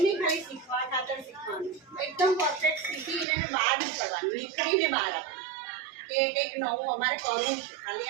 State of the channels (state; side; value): drops out; left; at 3.2 s